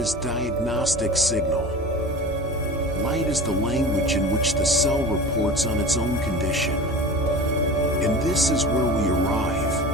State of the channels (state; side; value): normal; both; correlation 0.34